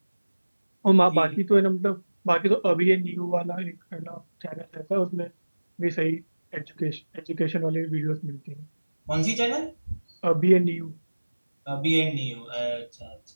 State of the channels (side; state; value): both; inverted; correlation -1.00